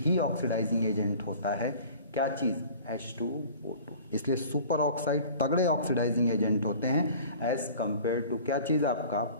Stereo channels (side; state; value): both; inverted; correlation -0.45